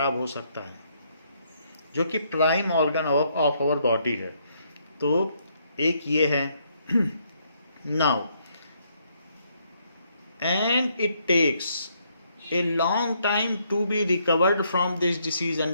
हो सकता है, जो कि prime organ of our body है. तो एक ये है. Now and it takes a long time to be recovered from this disease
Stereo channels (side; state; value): both; inverted; correlation -0.72